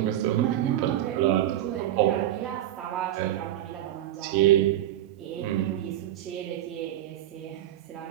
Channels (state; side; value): quieter; left; 12.8 dB